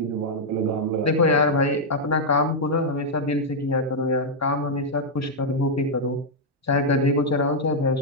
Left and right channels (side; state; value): both; normal; correlation -0.03